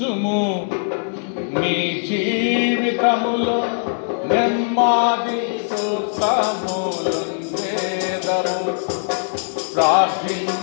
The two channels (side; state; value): right; silent; 62 dB below the other